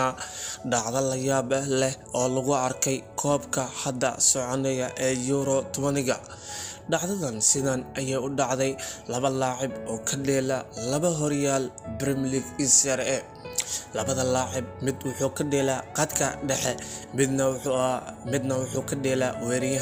dhacdo la yaab leh oo lagu arkay koobka hadda soconaya ee Euro 20ga. dhacdadan sidan ayay u dhacday laba laacib oo ka dheela laba horyaal Premier League Serie A. labada laacib mid wuxuu ka dheelaa qadka dhexe midna wuxuu ka dheelaa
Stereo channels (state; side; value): identical; both; correlation 1.00